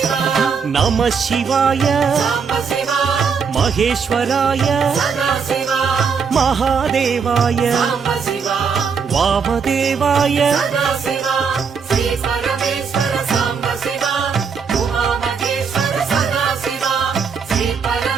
நம சிவாய மகேஸ்வராய மகாதேவாய வாமதேவாய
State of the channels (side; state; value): left; quieter; 6.0 dB